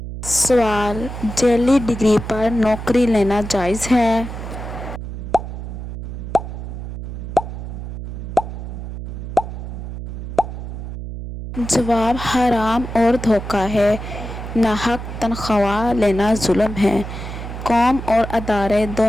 سوال: جعلی ڈگری پر نوکری لینا جائز ہے؟ جواب: حرام اور دھوکہ ہے، ناحق تنخواہ لینا ظلم ہے، قوم اور ادارے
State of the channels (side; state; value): right; noise; hum, 8 dB below the sound